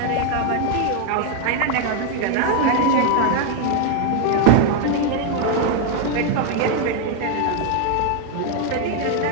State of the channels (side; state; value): both; different; correlation 0.01